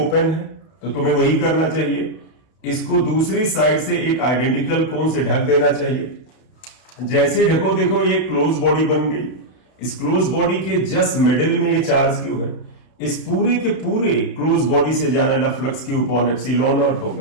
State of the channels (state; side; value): late; right; 32 ms